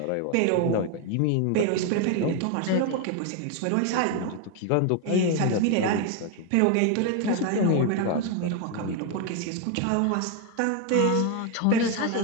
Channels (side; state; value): both; different; correlation 0.01